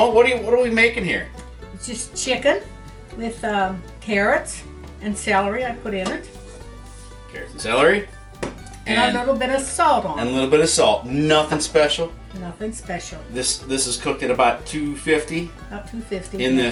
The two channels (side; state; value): both; identical; correlation 1.00